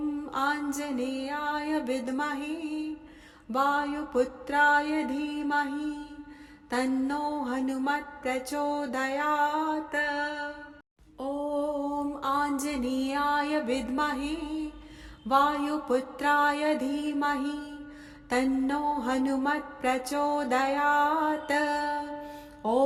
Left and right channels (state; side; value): identical; both; correlation 1.00